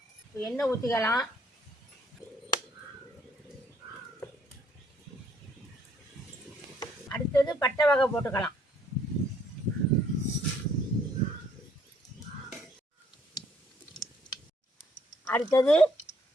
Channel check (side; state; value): both; normal; correlation 0.65